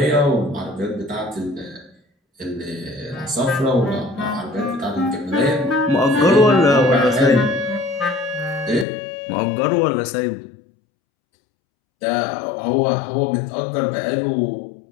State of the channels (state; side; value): drops out; right; at 8.8 s